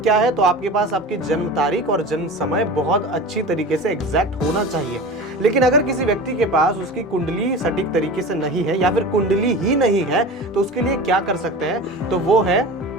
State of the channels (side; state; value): both; normal; correlation 0.33